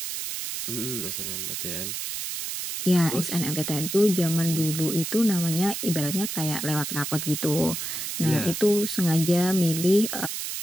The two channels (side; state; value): right; noise; hiss, 5 dB below the sound